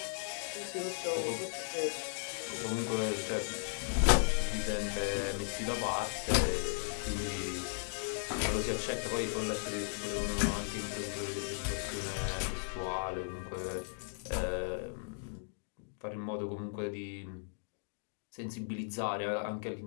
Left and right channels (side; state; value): right; silent; digital silence